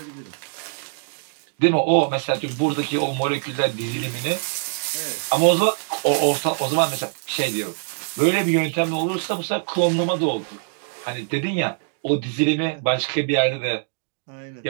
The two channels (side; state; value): left; silent; digital silence